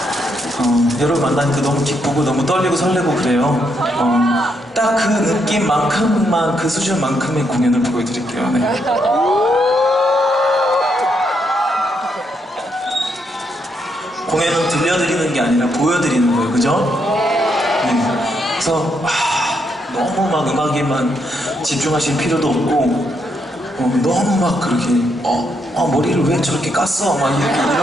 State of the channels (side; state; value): both; normal; correlation 0.78